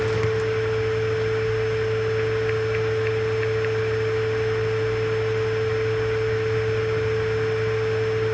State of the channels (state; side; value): identical; both; correlation 1.00